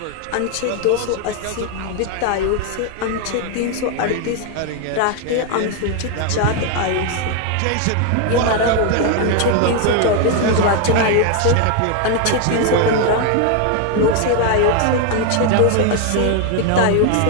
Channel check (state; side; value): different; both; correlation 0.01